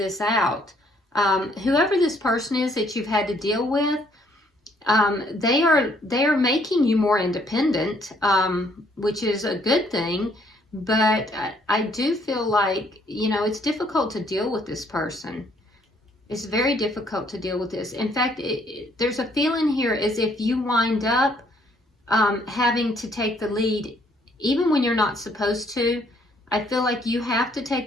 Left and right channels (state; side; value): normal; both; correlation 0.66